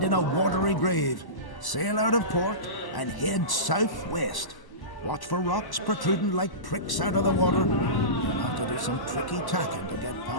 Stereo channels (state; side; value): late; right; 1.0 ms